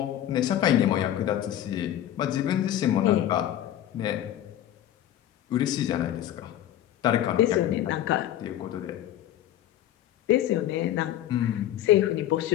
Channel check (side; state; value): right; quieter; 12.1 dB